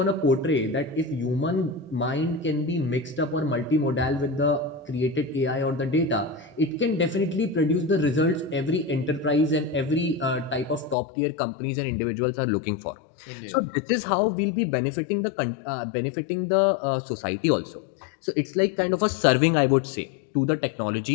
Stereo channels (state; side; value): drops out; right; at 11.0 s